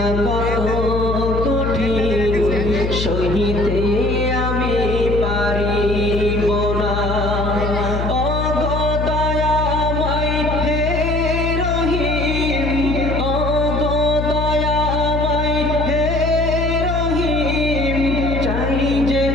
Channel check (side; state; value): left; noise; hum, 2 dB below the sound